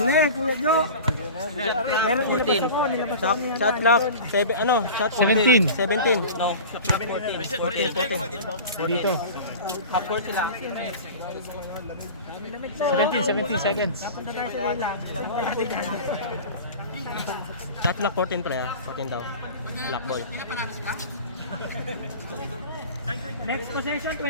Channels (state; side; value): inverted; both; correlation -0.35